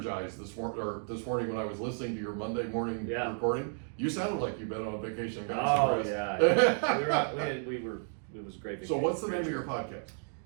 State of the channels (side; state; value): left; silent; 56 dB below the other